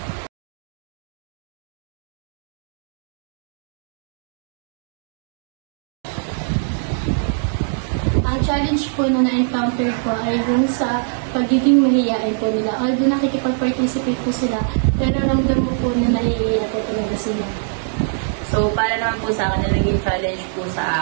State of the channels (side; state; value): left; silent; digital silence